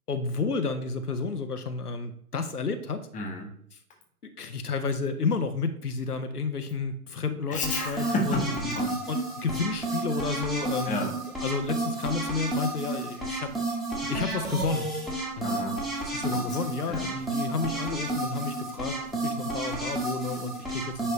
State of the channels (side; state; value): both; normal; correlation 0.09